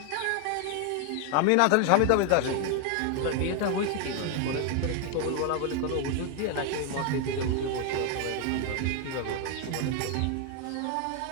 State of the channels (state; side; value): different; both; correlation 0.00